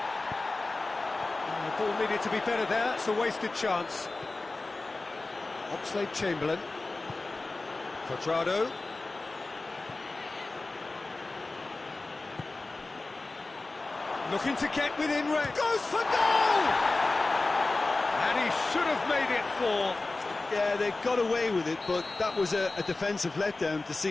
The ball needed to be better there. It's a wasted chance. Oxlade-Chamberlain. Quadrado. Looking to get within range. Goes for goal! And he should have made it four. Yeah, they got away with it, but that was a defensive letdown to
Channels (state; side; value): quieter; right; 3.3 dB